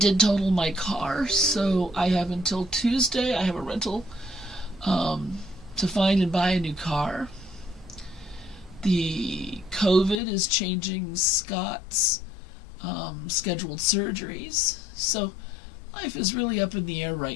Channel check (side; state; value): right; drops out; at 10.2 s